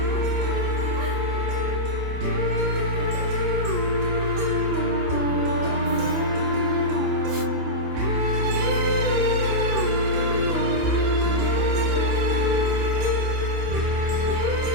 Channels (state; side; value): late; left; 28 ms